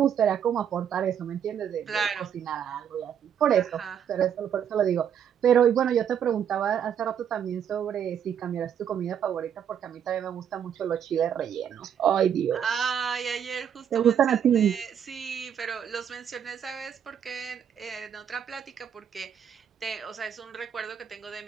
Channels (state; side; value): quieter; left; 8.6 dB